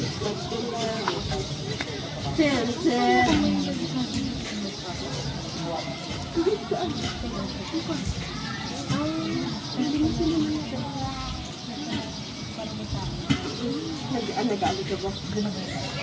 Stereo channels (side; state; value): both; identical; correlation 1.00